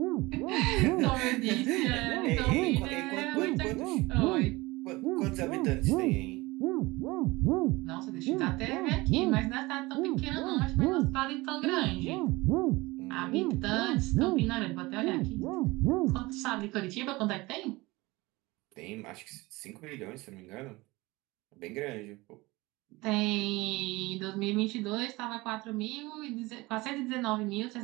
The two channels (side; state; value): left; quieter; 21.8 dB